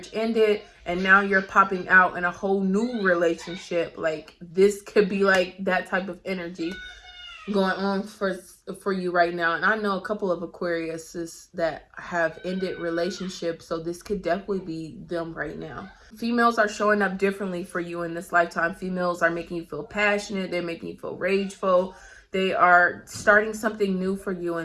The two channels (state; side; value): identical; both; correlation 1.00